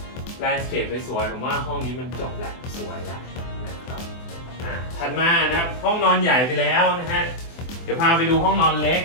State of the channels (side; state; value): right; late; 24 ms